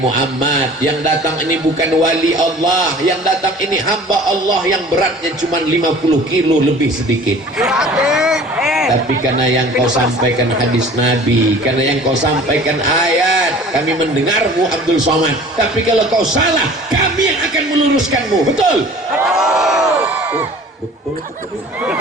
yang datang ini bukan wali Allah, yang datang ini hamba Allah yang beratnya cuma 50 kilo lebih sedikit. Tapi karena yang kau sampaikan hadis Nabi, karena yang kau sampaikan ayat, kami mendengarmu Abdul Somad. Tapi kalau kau salah, kami yang akan meluruskanmu. Betul? Betul.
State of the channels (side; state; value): both; normal; correlation 0.46